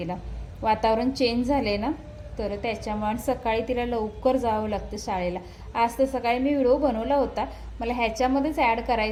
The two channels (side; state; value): both; identical; correlation 1.00